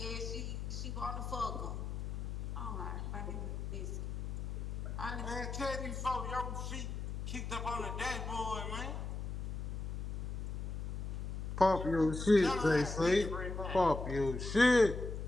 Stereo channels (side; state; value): left; noise; hum, 4 dB below the sound